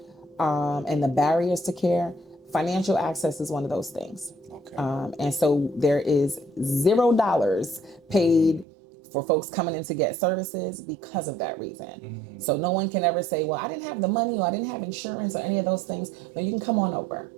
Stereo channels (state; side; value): drops out; left; at 8.7 s